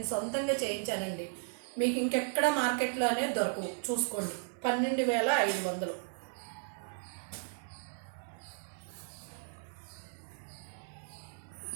సొంతంగా చేయించానండి. మీకు ఇంకెక్కడ మార్కెట్లో అనేది దొరకవు. చూసుకోండి, 12,500.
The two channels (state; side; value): silent; left; 54 dB below the other